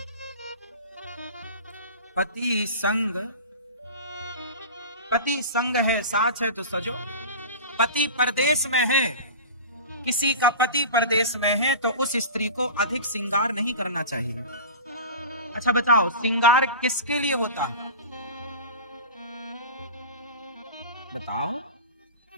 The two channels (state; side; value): inverted; both; correlation -0.33